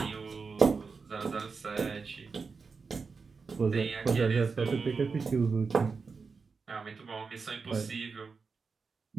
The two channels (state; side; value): quieter; left; 4.9 dB